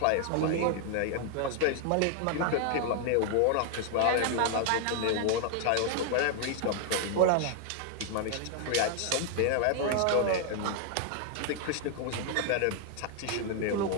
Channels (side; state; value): both; different; correlation 0.00